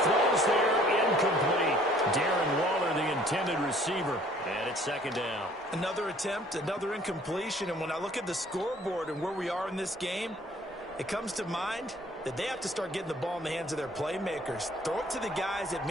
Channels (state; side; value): normal; both; correlation 0.56